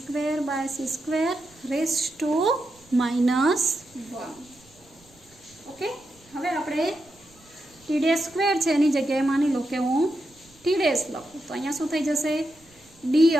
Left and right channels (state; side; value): noise; right; rumble, 29 dB below the sound